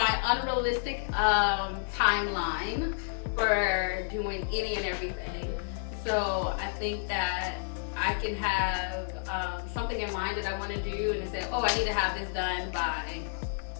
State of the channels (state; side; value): silent; right; digital silence